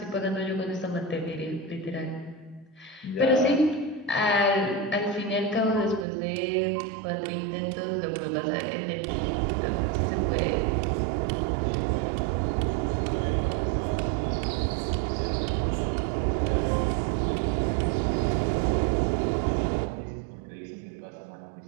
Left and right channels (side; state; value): left; drops out; at 6.1 s